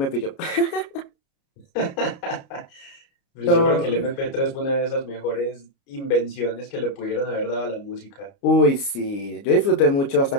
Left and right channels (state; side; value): late; right; 29 ms